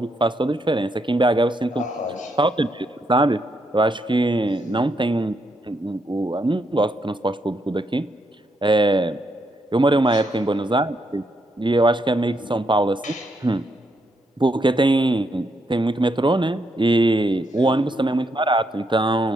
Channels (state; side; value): normal; both; correlation 0.77